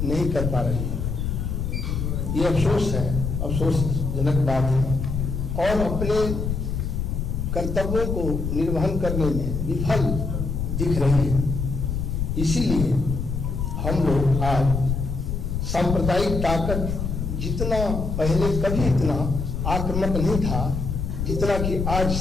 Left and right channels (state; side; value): noise; left; rumble, 2 dB below the sound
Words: नहीं कर पा रही है। ये अफसोस है, अफसोसजनक बात है, और अपने कर्तव्यों को निर्वहन करने में विफल दिख रही है। इसीलिए हम लोग आज सांप्रदायिक ताकत, जितना पहले कभी इतना आक्रामक नहीं था जितना कि आज